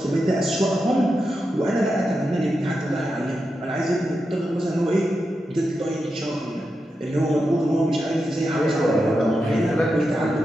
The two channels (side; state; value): both; normal; correlation 0.88